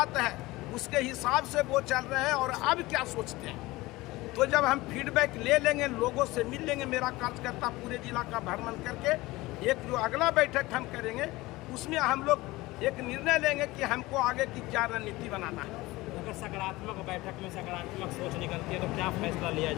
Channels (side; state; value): right; quieter; 20.0 dB